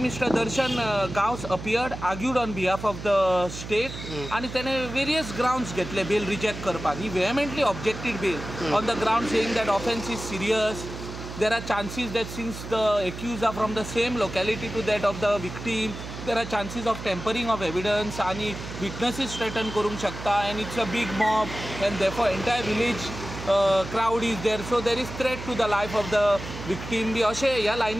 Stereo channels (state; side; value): noise; right; hum, 10 dB below the sound